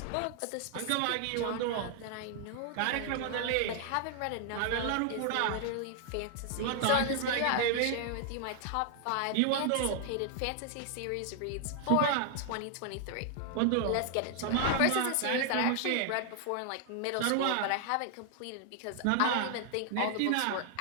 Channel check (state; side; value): different; both; correlation 0.00